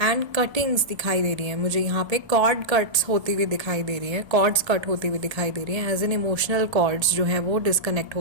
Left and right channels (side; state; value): left; late; 1.3 ms